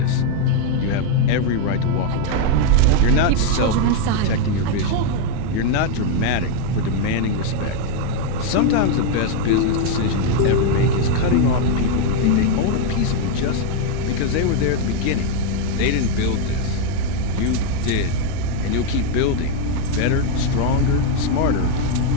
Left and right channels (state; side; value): different; both; correlation 0.01